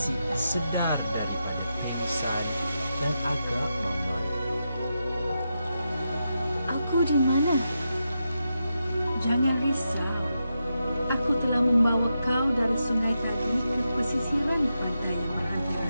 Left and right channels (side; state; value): both; inverted; correlation -0.87